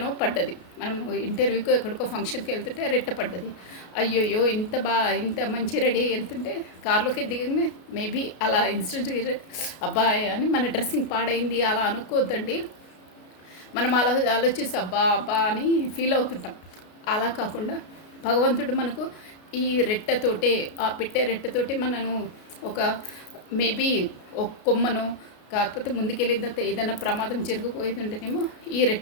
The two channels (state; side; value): late; right; 33 ms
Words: పడ్డది. మనం ఇంటర్వ్యూకో ఎక్కడికో ఫంక్షన్కి వెళ్తుంటే రెట్ట పడ్డది. అయ్యోయ్యో ఇంత మంచి రెడీ అయ్యి వెళ్తుంటే కార్లోకి దిగంగానే మేబీ అలా ఇన్సిడెంట్ అబ్బాయి అని మన డ్రెస్సింగ్ పాడైంది అలా అనుకోవద్దండి. మనం అలా ఆలోచిస్తే అబ్బా అని ఫీల్ అవుతుంటాం. అలా కాకుండా భగవంతుడు మనకు ఈ రెట్టతోటే, ఆ రెట్టతోటే మనను ఒక మేబీ ఒక కొమ్మను, కాకపోతే ముందుకెళ్ళిన తర్వాత ఏదైనా ప్రమాదం జరిగిపోయేది ఉంటేనేమో ఈ